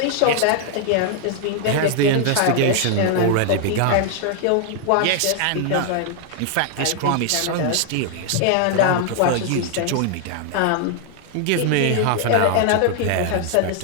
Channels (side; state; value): both; different; correlation 0.00